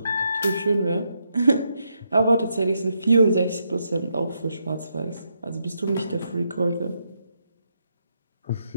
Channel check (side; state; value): both; inverted; correlation -0.80